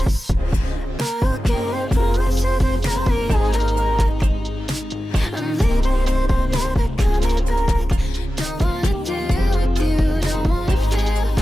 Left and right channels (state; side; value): normal; both; correlation 0.94